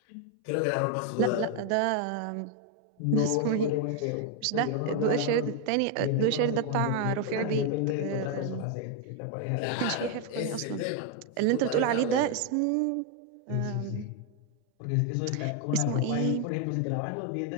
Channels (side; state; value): both; different; correlation 0.01